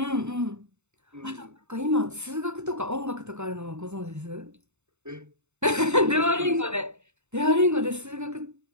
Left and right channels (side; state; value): left; late; 0.82 ms